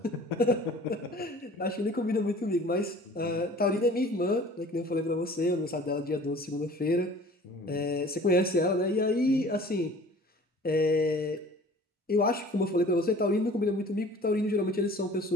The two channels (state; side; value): normal; both; correlation 0.47